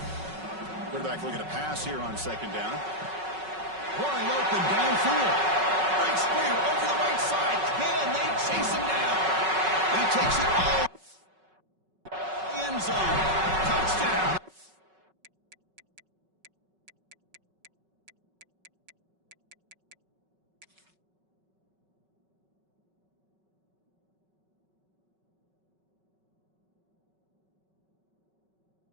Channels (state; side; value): late; left; 5.3 ms